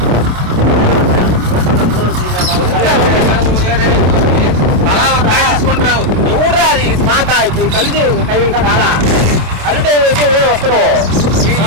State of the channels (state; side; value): late; left; 28 ms